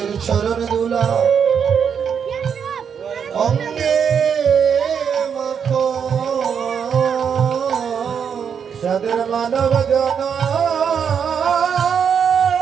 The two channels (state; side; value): quieter; left; 7.3 dB